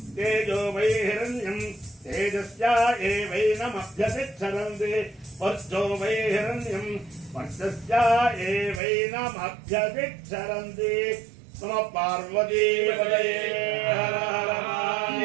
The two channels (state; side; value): drops out; left; at 8.8 s